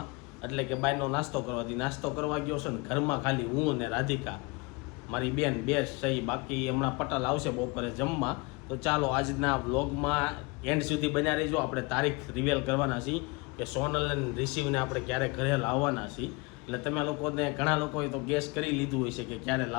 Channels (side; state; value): right; quieter; 27.4 dB